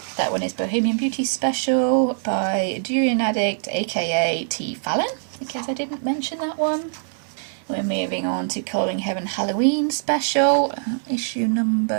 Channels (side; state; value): left; silent; digital silence